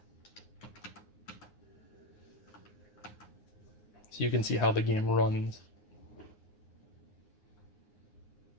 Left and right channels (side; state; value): right; late; 9.6 ms